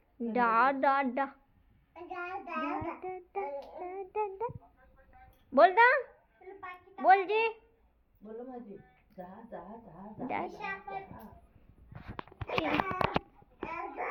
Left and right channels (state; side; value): identical; both; correlation 1.00